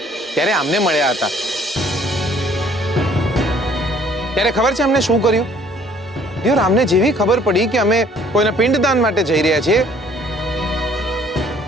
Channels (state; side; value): normal; both; correlation 0.58